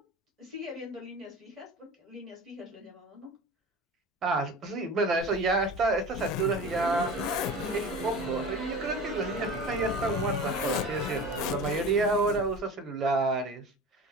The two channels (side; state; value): both; normal; correlation 0.35